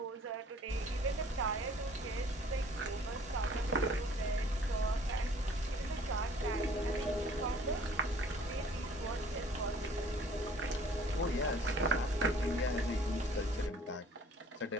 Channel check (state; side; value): normal; both; correlation 0.55